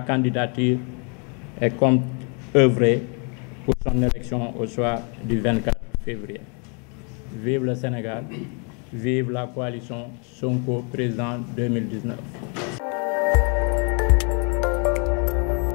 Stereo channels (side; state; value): right; quieter; 36.5 dB